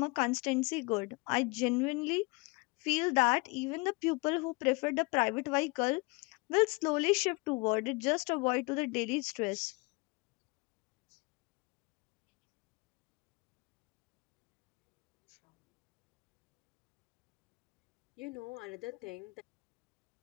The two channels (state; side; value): quieter; right; 27.2 dB